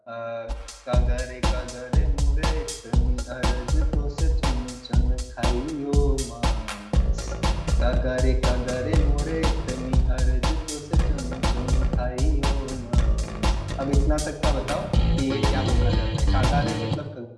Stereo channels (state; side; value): identical; both; correlation 1.00